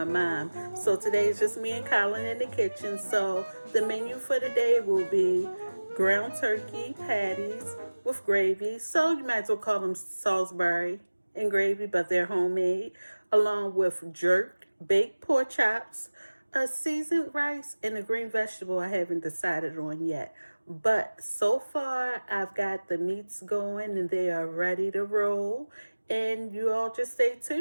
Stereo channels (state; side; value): inverted; both; correlation -1.00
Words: mom, so today is just me and Colin in the kitchen. So the menu for today will be ground turkey patties with gravy. So you might as well call them Salisbury and gravy, but they're homemade, along with jerk baked pork chops, a seasoned rice, and a green vegetable I haven't decided on yet. But so far, I've got the meats going and they are ready to roll. And you all just stay